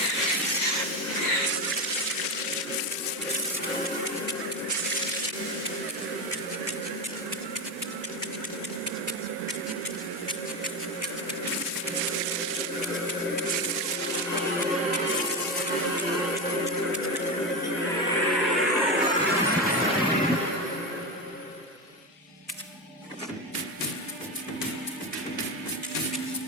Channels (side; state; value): both; normal; correlation 0.17